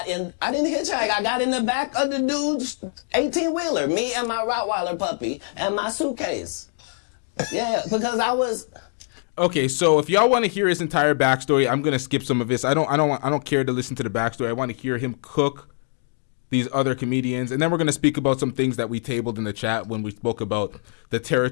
didn't hitchhike. I got in the back of the dude's 18-wheeler. Me and my Rottweiler puppy and my suitcase. Yeah, because I was. Okay, so if y'all want to hear his entire backstory, I'm gonna skip some of this. I don't care to listen to the backstory. I want to hear him cook these other comedians, and then we're gonna speak about some things that we tabled in the chat when we spoke about the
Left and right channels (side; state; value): right; silent; 63 dB below the other